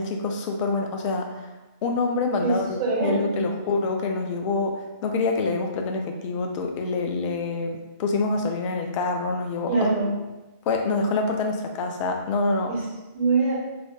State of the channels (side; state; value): both; inverted; correlation -0.49